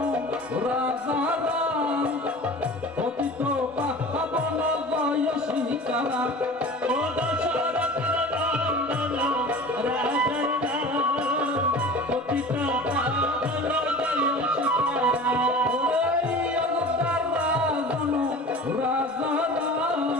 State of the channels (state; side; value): normal; both; correlation 0.39